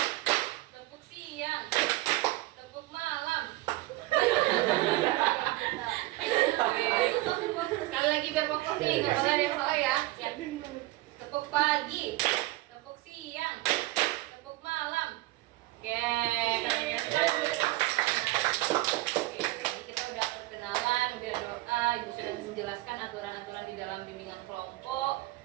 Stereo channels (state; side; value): quieter; left; 18.8 dB